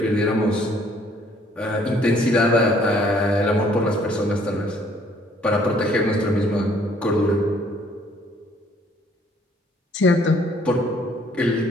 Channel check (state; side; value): normal; both; correlation 0.62